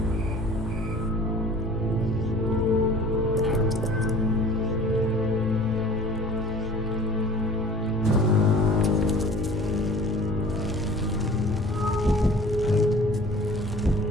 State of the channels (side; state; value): both; normal; correlation 0.46